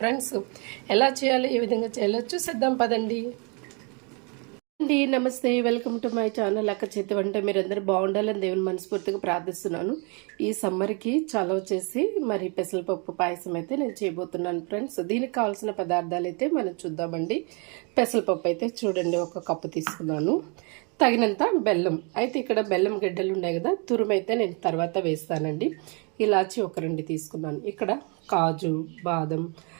ఫ్రెండ్స్, ఎలా చేయాలో ఏ విధంగా చేయాలో చూసేద్దాం పదండి. అండి నమస్తే, వెల్కమ్ టు మై ఛానల్ అక్క చేతి వంట. మీరందరూ బాగుండాలని దేవుని మనస్ఫూర్తిగా ప్రార్థిస్తున్నాను. ఈ సమ్మర్కి చలవ చేసి మరి పెసరపప్పు పాయసం అయితే నేను చేయబోతున్నాను ఫ్రెండ్స్. దీనికి కావాల్సిన పదార్థాలు అయితే మనం చూద్దామండి. పెసరపప్పు అయితే చూడండి, 1 కప్పు తీసుకున్నాను. తగినంత బెల్లం అయితే, ఇక్కడ బెల్లం గడ్డలు ఉన్నాయి కదా, తురుము అయితే నేను తర్వాత వేస్తానండి. ఇలాచి 2 తీసుకున్నాను. ఇక్కడ కాజు, బాదం,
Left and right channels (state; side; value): quieter; left; 33.9 dB